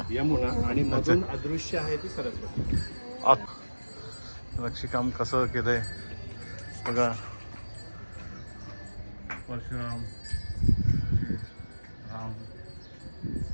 यमुना आणि मधून अदृश्य आहे ती सरस्वती. नक्षीकाम कसं केलंय बघा. परशुराम राम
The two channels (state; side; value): inverted; both; correlation -1.00